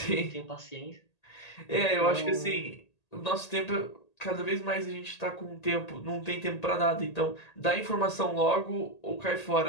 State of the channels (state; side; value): late; right; 1.8 ms